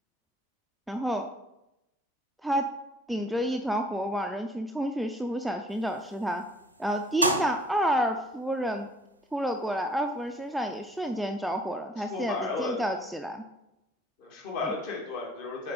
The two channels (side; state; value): both; normal; correlation 0.54